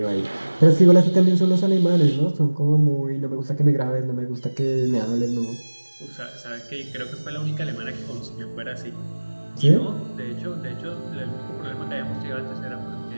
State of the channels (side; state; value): both; inverted; correlation -1.00